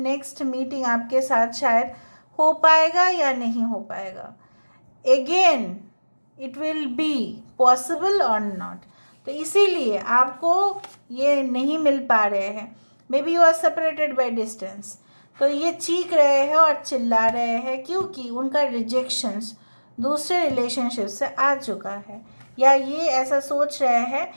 मीटिंग आपके साथ शायद हो पाएगा या नहीं हो पाएगा। Again it will be possible और नॉट। तो इसीलिए आपको ये नहीं मिल पा रहे हैं। Maybe you are separated by distance. तो ये चीख रहे हैं और चिल्ला रहे हैं क्योंकि उनका रिजेक्शंस दूसरे रिलेशनशिप से आ चुका है, या ये ऐसा सोच रहे हैं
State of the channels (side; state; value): both; inverted; correlation -1.00